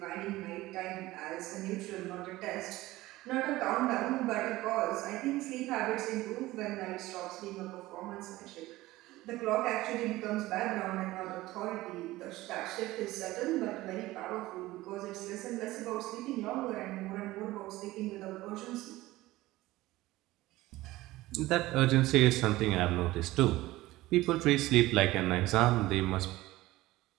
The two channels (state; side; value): quieter; left; 17.8 dB